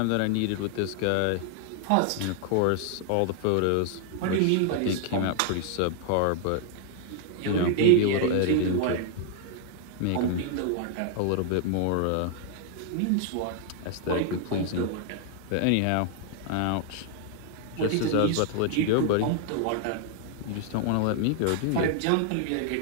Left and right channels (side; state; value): both; different; correlation 0.00